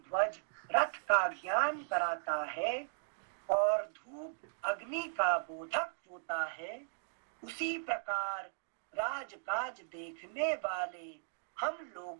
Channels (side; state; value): left; silent; digital silence